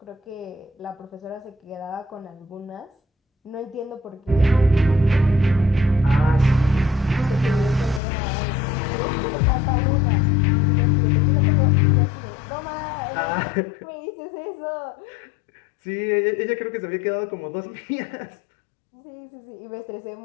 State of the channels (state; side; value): drops out; right; at 8.0 s